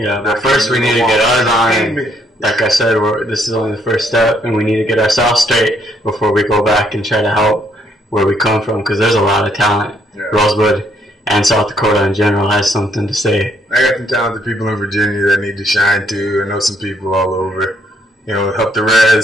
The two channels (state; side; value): normal; both; correlation 0.70